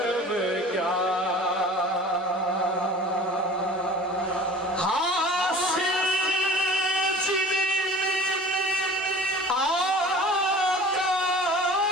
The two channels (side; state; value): both; normal; correlation 0.44